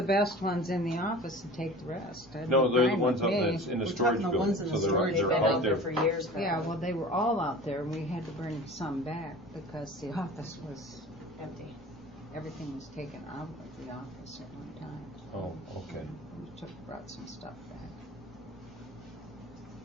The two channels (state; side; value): normal; both; correlation 0.39